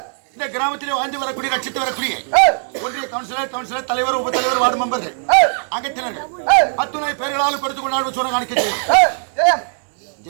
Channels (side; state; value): left; silent; digital silence